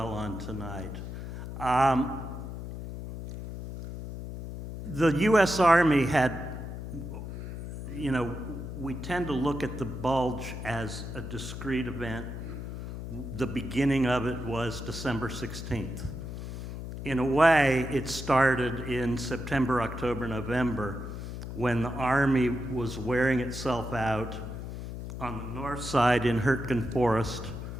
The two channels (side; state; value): left; noise; hum, 8 dB below the sound